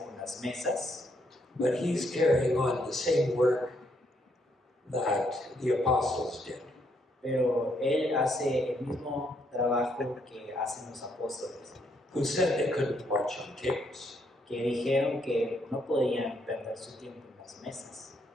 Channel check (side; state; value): both; normal; correlation 0.73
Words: con las mesas, but he's carrying on the same work that the apostles did. pero él hace el mismo trabajo que hacen los apóstoles, Who said they couldn't watch on tables. que dijeron que no podían perder su tiempo en las mesas.